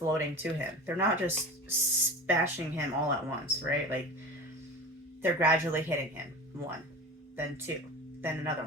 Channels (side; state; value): both; normal; correlation 0.33